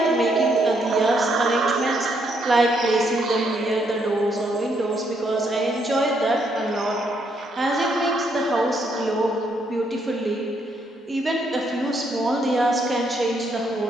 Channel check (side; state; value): both; normal; correlation 0.74